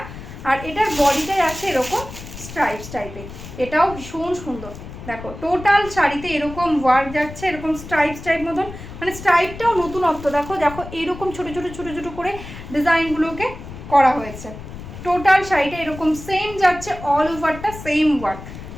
আর এটার বডিটাই আছে এরকম স্ট্রাইপস টাইপের, এটাও ভীষণ সুন্দর। দেখো টোটাল শাড়িতে এরকম ওয়ার্ক যাচ্ছে, এরকম স্ট্রাইপস টাইপ মতন, মানে স্ট্রাইপটাও নতুনত্ব, দেখো দেখো এরকম ছোটো ছোটো ছোটো ছোটো করে ডিজাইনগুলোকে করা হয়েছে। টোটাল শাড়িটা এরকম সেম যাচ্ছে, অল ওভারটা সেম ওয়ার্ক,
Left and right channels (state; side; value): noise; left; rumble, 13 dB below the sound